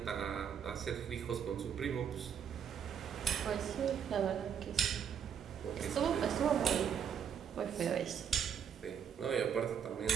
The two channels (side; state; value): left; quieter; 7.9 dB